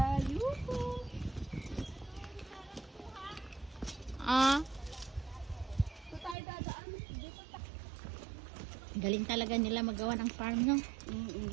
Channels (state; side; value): drops out; left; at 6.4 s